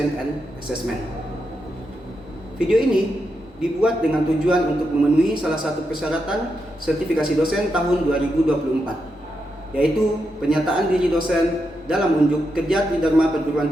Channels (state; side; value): normal; both; correlation 0.84